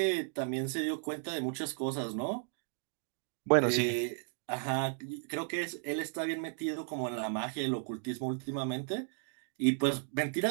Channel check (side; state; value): left; silent; digital silence